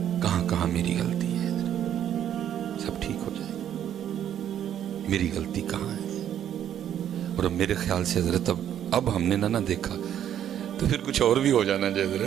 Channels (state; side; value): quieter; left; 10.2 dB